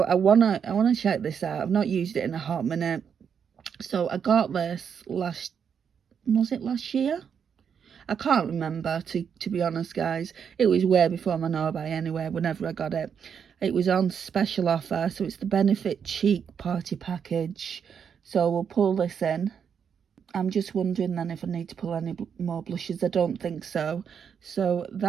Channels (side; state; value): left; quieter; 7.3 dB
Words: I wanna check this out. I've not used it in a hot minute. So I got this last year? I can't remember, to be honest, guys. It was way before my no-buy anyway, whenever I got it. It was on special offer, so it's the Benefit Cheek Party Package. So we'll pull this in. I'm just wondering then if I need to pull any more blushes. I don't think so. So